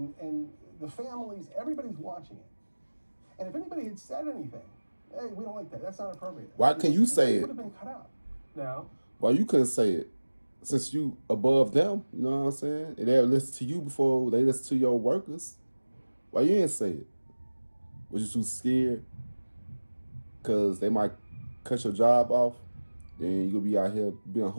the families, everybody's watching it. And if anybody had said anything, hey, we don't like that, that's not appropriate. Why can you say it? It would have been cut out. Now, why you couldn't say it? Since you above them, you know what I'm saying? And they'll listen to you before they listen to your workers. Why you didn't say it? Was you too scared? Because they might cut your job off. Then you'll be out here being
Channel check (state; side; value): inverted; both; correlation -1.00